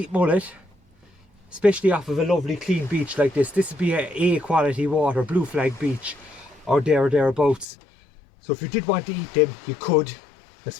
mullet, especially off of a lovely clean beach like this. This would be a quality water, blue flag beach, or thereabouts. So if you did want to eat them, you could. They're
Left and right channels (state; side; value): drops out; right; at 7.7 s